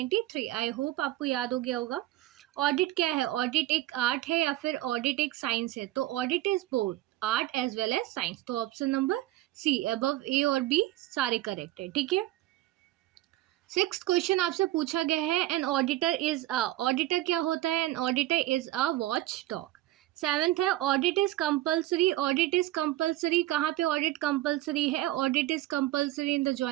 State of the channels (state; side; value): quieter; left; 15.8 dB